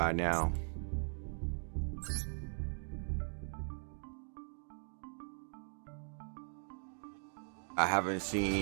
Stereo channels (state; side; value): silent; left; 51 dB below the other